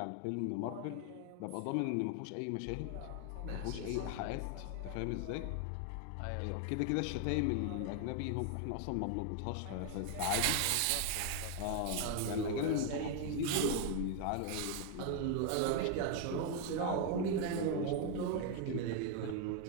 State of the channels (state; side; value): different; both; correlation 0.00